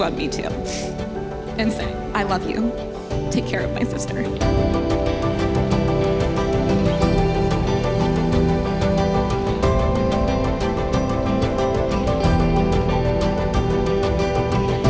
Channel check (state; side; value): identical; both; correlation 1.00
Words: me to. And say, "I love you. Take care of my sister."